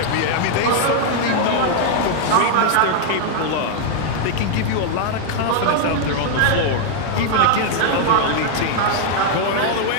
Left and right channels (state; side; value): different; both; correlation 0.00